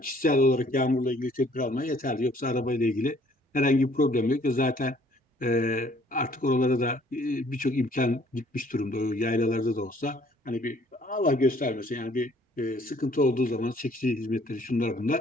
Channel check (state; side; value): normal; both; correlation 0.59